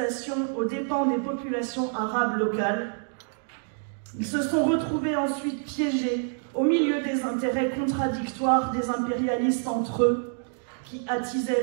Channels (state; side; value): silent; left; 60 dB below the other